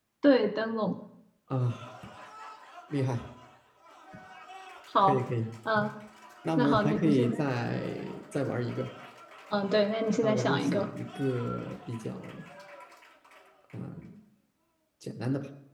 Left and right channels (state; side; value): identical; both; correlation 1.00